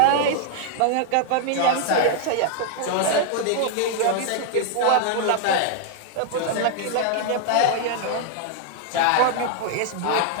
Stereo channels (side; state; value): both; different; correlation 0.00